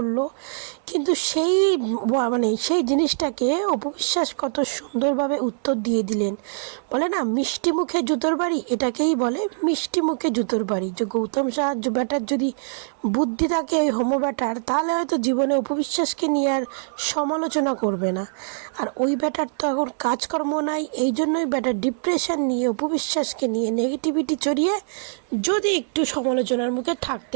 কিন্তু সেই জিনিসটাকে অপু বিশ্বাস কত সুন্দরভাবে উত্তর দিয়ে দিলেন। বলে না, মিষ্টি মুখে জুতোর বাড়ি, এটাকেই বলে মিষ্টি মুখে জুতোর বাড়ি। যে গৌতম শাহ ব্যাটার যদি বুদ্ধি থাকে, ওই হোমো ব্যাটার, তাহলে হয়তো জীবনে অপু বিশ্বাসকে নিয়ে আর সমালোচনা করবে না। আর ওই ব্যাটার তো এখন কাজকর্ম নাই, এই জন্যই ব্যাটার ডিপ্রেশন নিয়ে অপু বিশ্বাসকে নিয়ে নেগেটিভিটি ছড়িয়ে যদি একটু সমালোচনার মুখে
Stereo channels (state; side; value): silent; left; 63 dB below the other